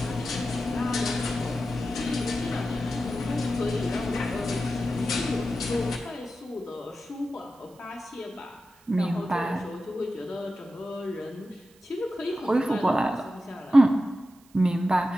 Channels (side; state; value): right; noise; hiss, 29 dB below the sound